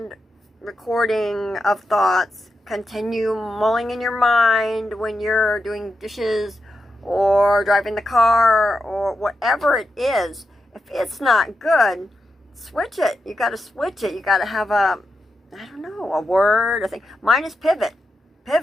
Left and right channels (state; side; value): normal; both; correlation 0.87